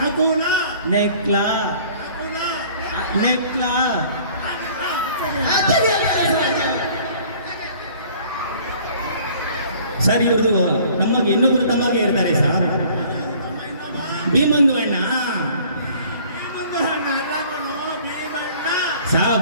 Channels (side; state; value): both; inverted; correlation -0.53